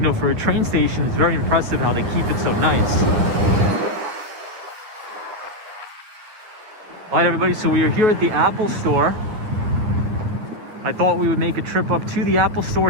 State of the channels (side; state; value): left; late; 9.6 ms